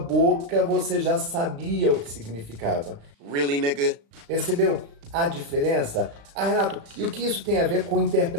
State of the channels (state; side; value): late; left; 35 ms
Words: você já sabia o que significava. Really, nigga? Percebeu a diferença? Ah, Renato, e o que isso tem a ver com